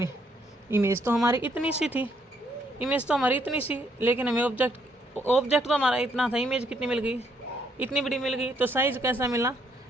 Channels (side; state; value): both; normal; correlation 0.71